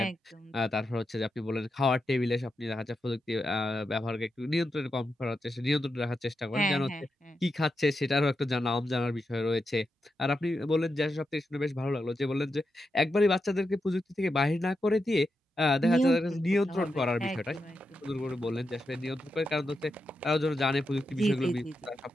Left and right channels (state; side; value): normal; both; correlation 0.87